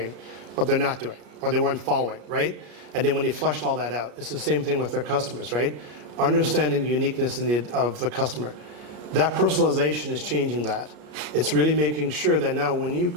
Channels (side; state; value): left; late; 33 ms